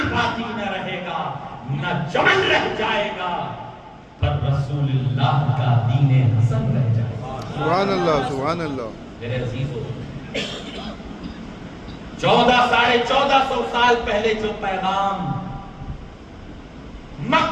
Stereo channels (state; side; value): identical; both; correlation 1.00